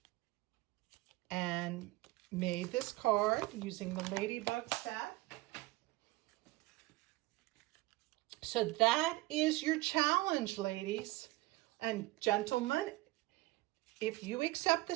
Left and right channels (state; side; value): quieter; left; 19.6 dB